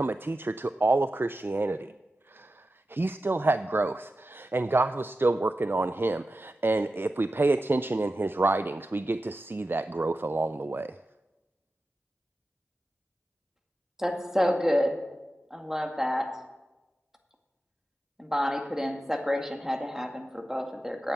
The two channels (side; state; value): both; normal; correlation 0.92